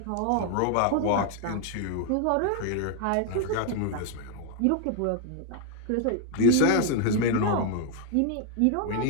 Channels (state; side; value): different; both; correlation 0.00